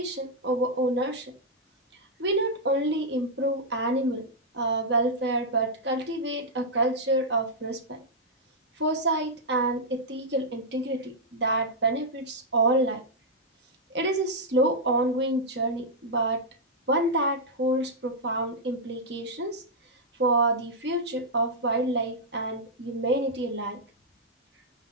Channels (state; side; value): normal; both; correlation -0.06